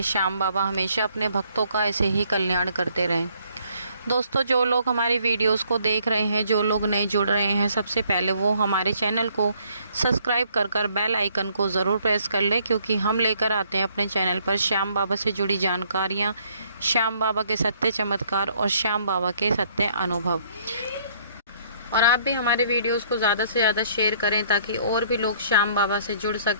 श्याम बाबा हमेशा अपने भक्तों का ऐसे ही कल्याण करते रहें। दोस्तों, जो लोग हमारी वीडियोस को देख रहे हैं, जो लोग नए जुड़ रहे हैं, सबसे पहले वो हमारे चैनल को सब्सक्राइब कर बेल आइकन को ज़रूर प्रेस कर लें, क्योंकि हम लेकर आते हैं अपने चैनल पर श्याम बाबा से जुड़ी जानकारियाँ, श्याम बाबा के सत्य चमत्कार और श्याम बाबा के सत्य अनुभव। और आप भी हमारे वीडियोस को ज़्यादा से ज़्यादा शेयर करें ताकि और भी लोग श्याम बाबा से जुड़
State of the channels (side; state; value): both; inverted; correlation -0.64